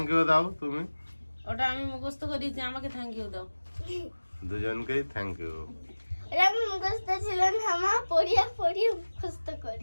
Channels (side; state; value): both; inverted; correlation -1.00